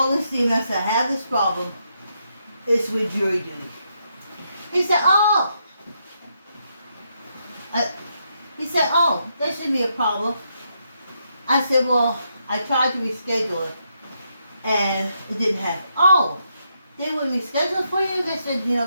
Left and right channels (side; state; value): both; inverted; correlation -0.79